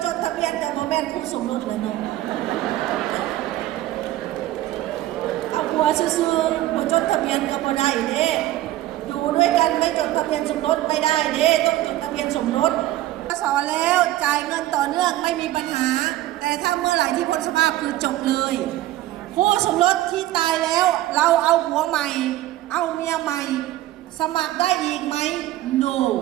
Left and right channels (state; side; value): quieter; left; 15.1 dB